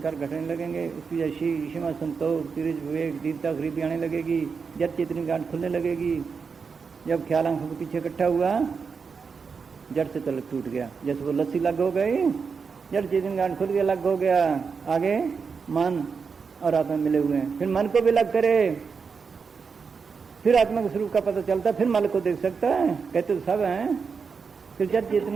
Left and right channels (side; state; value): left; quieter; 5.5 dB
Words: घटने लगेंगे, उसकी जैसी क्षमा संतोष तिरज विवेक दीनता गरीबी आने लगेगी, जब चेतनी गांठ खुलने लगेगी। जब ख्याल आंखों के पीछे इकट्ठा हुआ, जड़ से तलक टूट गया, जैसे वो लस्सी लग हो गई, जड़ चेतनी गांठ खुल गया, लग हो गया। आगे मन और आत्मा मिले हुए हैं, फिर मन को भी लग करे, फिर आत्मा के स्वरूप का पता चलता, फिर मन को देख सकता है। कहते तो सब हैं, फिर जब